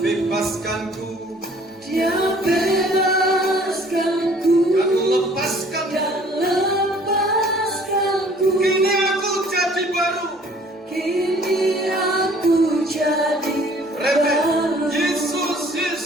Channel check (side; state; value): both; normal; correlation 0.55